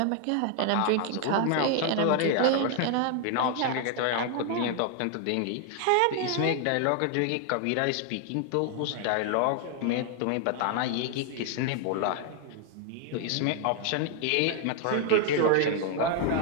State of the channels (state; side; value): different; both; correlation 0.00